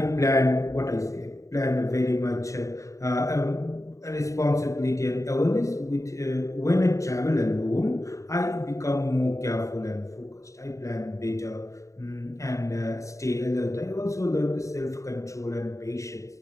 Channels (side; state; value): right; late; 0.15 ms